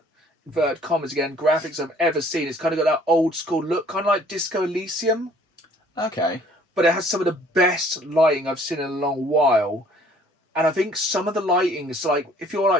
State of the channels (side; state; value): both; normal; correlation 0.57